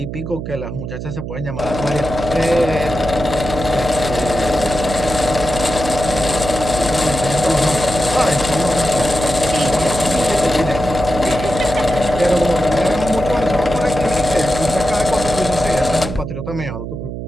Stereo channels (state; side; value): noise; right; hum, 7 dB below the sound